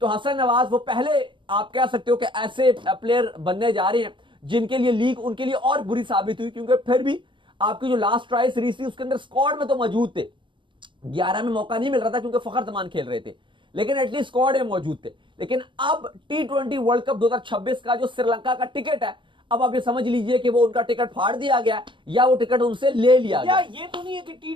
तो हसन नवाज वो पहले आप कह सकते हो कि ऐसे प्लेयर बनने जा रहे हैं जिनके लिए लीग उनके लिए और बुरी साबित हुई, क्योंकि फिर भी आपकी जो लास्ट ट्राई सीरीज थी उसके अंदर स्क्वाड में तो मौजूद थे। 11 में मौका नहीं मिल रहा था क्योंकि फखर जमान खेल रहे थे, लेकिन एटलीस्ट स्क्वाड में मौजूद थे। लेकिन अब T20 वर्ल्ड कप 2026 का जो श्रीलंका का टिकट है, अब आप ये समझ लीजिए कि वो उनका टिकट फाड़ दिया गया या वो टिकट उनसे ले लिया गया। ये तो नहीं है कि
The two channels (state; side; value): late; left; 0.24 ms